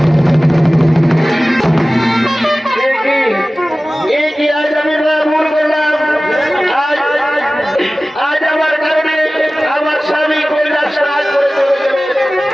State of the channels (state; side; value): normal; both; correlation 0.97